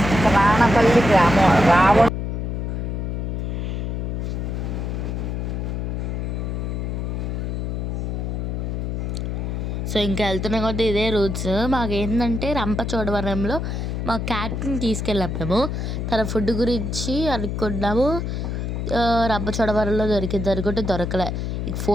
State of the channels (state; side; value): noise; left; hum, 2 dB below the sound